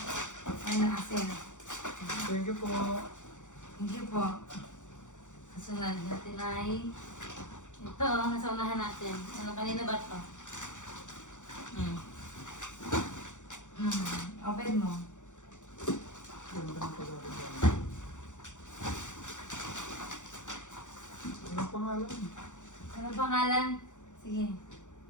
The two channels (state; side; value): late; right; 0.85 ms